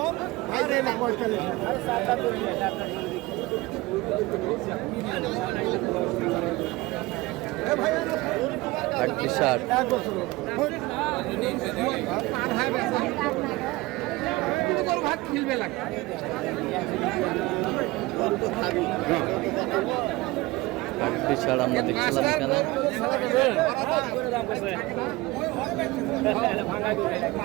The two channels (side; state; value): left; quieter; 20.9 dB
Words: আটত্রিশ ষাট। আটত্রিশ ষাট আমরা দেখছিলাম এখানে।